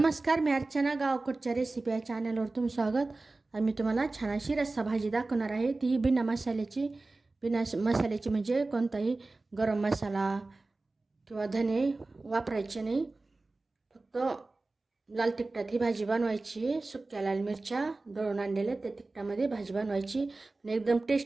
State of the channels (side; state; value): left; quieter; 3.3 dB